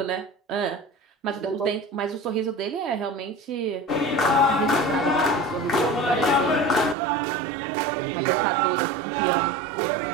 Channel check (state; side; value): drops out; left; at 7.0 s